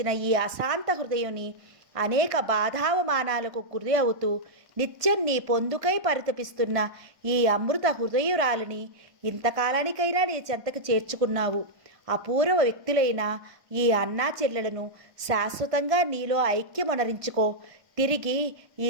ఈ అశాంత హృదయుని అనేక బాధావమానాలకు గురి అవుతూ నిత్యం నీ పొందుకై పరితపిస్తున్న ఈ అమృత హృదయురాలిని ఇంతకాలానికైనా నీ చెంతకు చేర్చుకున్నావు. అపూర్వ వ్యక్తులైన ఈ అన్నా చెల్లెలను శాశ్వతంగా నీలో ఐక్యమొనరించుకో. తిరిగి ఈ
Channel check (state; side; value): late; left; 1.5 ms